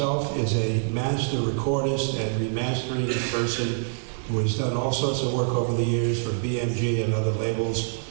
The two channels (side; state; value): left; silent; digital silence